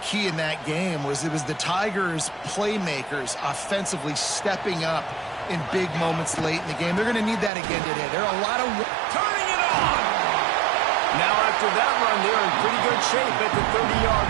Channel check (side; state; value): left; drops out; at 7.5 s